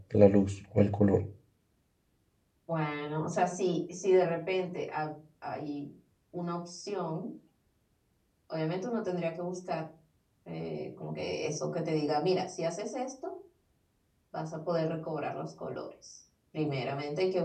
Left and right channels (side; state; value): both; identical; correlation 1.00